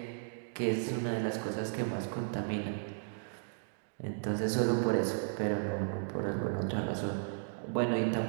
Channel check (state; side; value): silent; left; digital silence